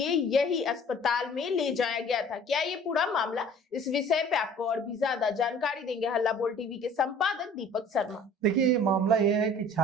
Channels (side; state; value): both; normal; correlation 0.49